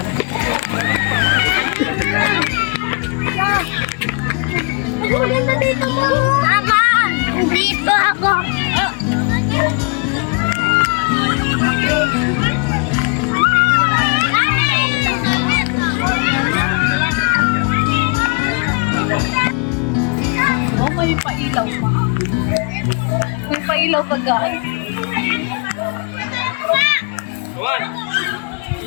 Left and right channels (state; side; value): quieter; right; 33.8 dB